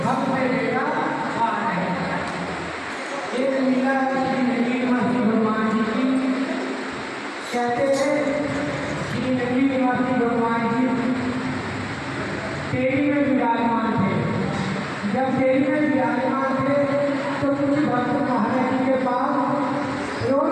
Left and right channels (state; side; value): identical; both; correlation 1.00